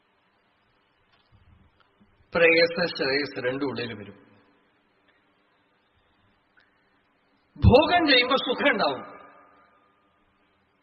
പ്രേയസ ശ്രേയസ് രണ്ടും ഉള്ളിൽ വരും. ഭോഗം ചെയ്യുമ്പോൾ സുഖം ഉണ്ടാവും,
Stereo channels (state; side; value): identical; both; correlation 1.00